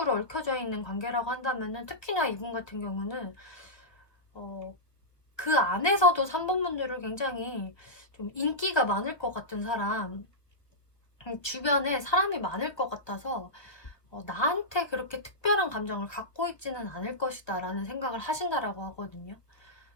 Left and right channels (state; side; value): late; right; 1.3 ms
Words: 얽혀져 있는 관계라고 한다면은, 특히나 이분 같은 경우는 그 안에서도 3번 분들을 굉장히 좀 인기가 많을 것 같은 사람, 주변에 사람이 많을 것 같아서 나한테 그렇게 특별한 감정을 갖고 있지는 않을 것이다 라는 생각을 하신다라고 하거든요.